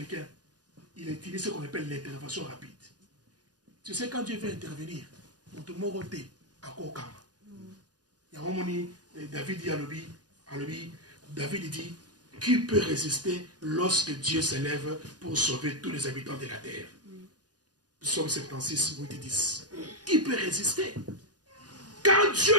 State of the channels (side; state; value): left; late; 0.69 ms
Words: il utilise ce qu'on appelle l'intervention rapide. Tu sais, quand Dieu veut intervenir, tout le monde est à Kokama. Il y a un moment, David dit à l'obéi, David dit, qui peut résister lorsque Dieu s'élève pour sauver tous les habitants de la terre? Psaume 76, 8 et 10. Qui peut résister? Quand Dieu